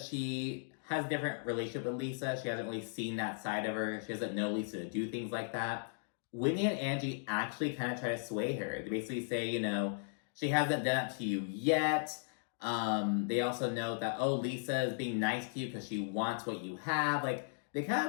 she has a different relationship with Lisa, she hasn't really seen that side of her, she doesn't know Lisa to do things like that, Whitney and Angie actually kind of try to sway her. They basically say, you know, she hasn't done it to you yet. They also note that, oh, Lisa is being nice to you because she wants what you have. Like, they kind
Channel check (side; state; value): right; silent; digital silence